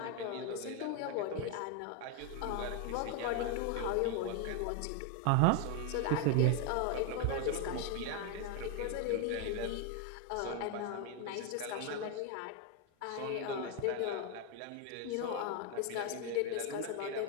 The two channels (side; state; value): both; different; correlation 0.01